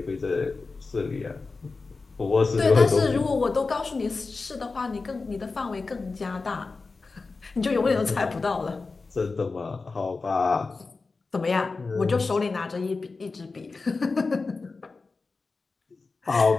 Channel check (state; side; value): quieter; right; 4.0 dB